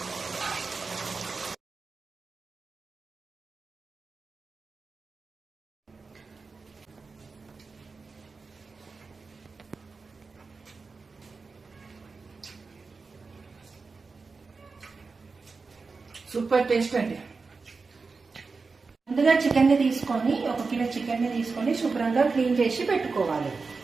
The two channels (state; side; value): quieter; left; 4.4 dB